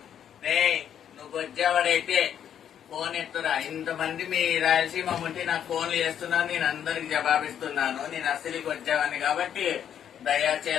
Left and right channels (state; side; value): quieter; right; 9.3 dB